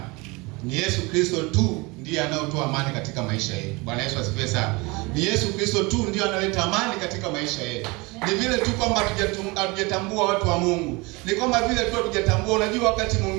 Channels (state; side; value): quieter; left; 25.5 dB